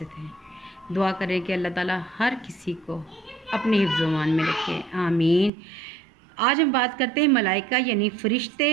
थे। दुआ करें कि अल्लाह ताला हर किसी को अपने हिफ्ज़-ओ-मान में रखे, आमीन। आज हम बात करते हैं मलाइका यानी फ़रिश्ते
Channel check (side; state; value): left; drops out; at 5.5 s